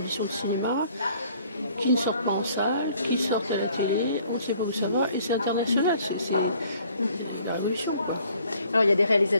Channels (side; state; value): both; inverted; correlation -0.59